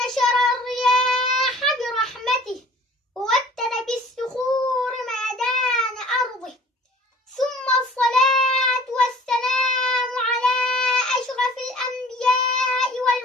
الرياح برحمته ووتر بالصخور ميدان أرضه، ثم الصلاة والسلام على أشرف الأنبياء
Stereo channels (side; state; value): both; normal; correlation 0.50